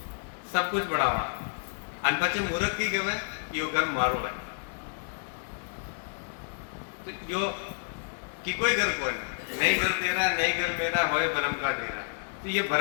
सब कुछ बनावा, अन पचे मूर्ख की कहे यो घर मारो है, तो यो की कोई घर कोई नहीं, घर तेरा नहीं घर मेरा होए भरम का डेरा। तो ये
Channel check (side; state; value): right; silent; digital silence